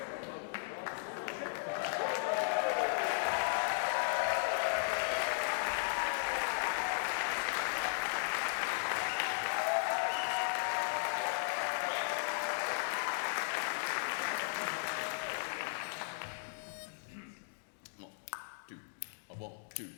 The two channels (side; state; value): right; silent; digital silence